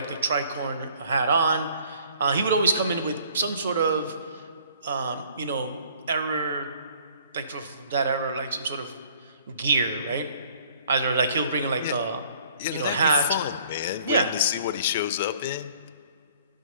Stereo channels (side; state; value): both; inverted; correlation -0.56